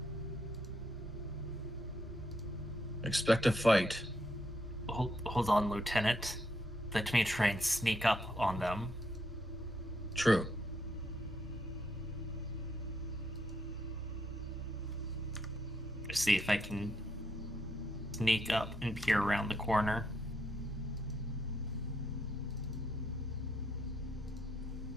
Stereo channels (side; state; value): both; normal; correlation 0.77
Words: Expect a fight. Hold on, Lieutenant. Let me try and sneak up on them. True. See if I can sneak up and peer around the corner.